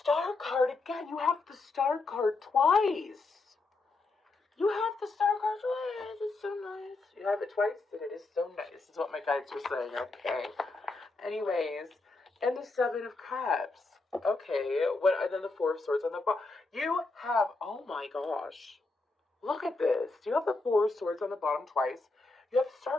Star card, again, you have the Star card twice. You have the star card twice. It's so nice. You have it twice, and it is so nice. Is what my guides were saying. Okay. Anyways, and the Seven of Cups. Okay. What? And then the Four of Swords on the bottom. You have. Oh my gosh. Look at this. You have the Four of Swords on the bottom twice. You have the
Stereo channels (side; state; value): right; quieter; 3.5 dB